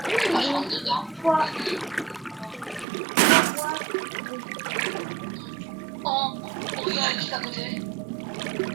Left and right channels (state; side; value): drops out; left; at 2.9 s